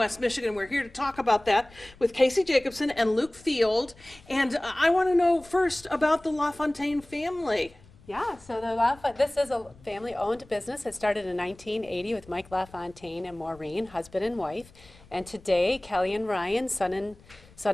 Michigan. We're here to talk about that with Casey Jacobson and Luke Field, and I want to know first about the LaFontaine family. Yeah, so this is a family-owned business. It started in 1980 with Mike LaFontaine and Maureen, husband and wife, and today Kelly and Ryan, son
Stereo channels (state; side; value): noise; left; rumble, 25 dB below the sound